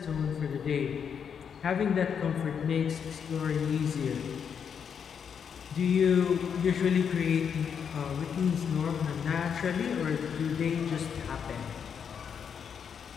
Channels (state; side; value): quieter; right; 7.3 dB